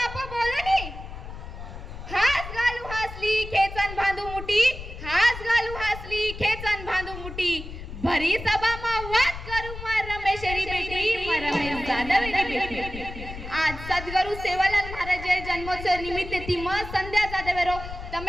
बोलनी. हास घालू हासली खेचन बांधू मुठी, हास घालू हासली खेचन बांधू मुठी. भरी सभा मा वाद करू मा रमेशरी बेटी, मा रमेश जाधवेरी बेटी. आज सद्गुरु सेवालाल महाराज जन्मोत्सव निमित्त ती म संध्या जाधवेरो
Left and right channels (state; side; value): noise; left; rumble, 11 dB below the sound